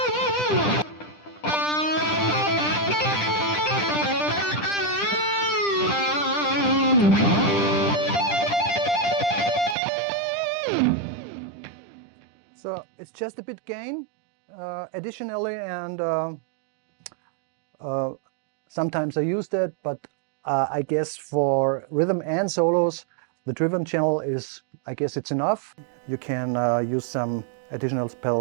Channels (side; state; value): left; drops out; at 9.8 s